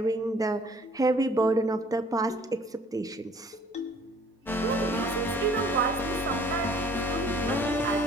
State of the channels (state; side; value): normal; both; correlation 0.55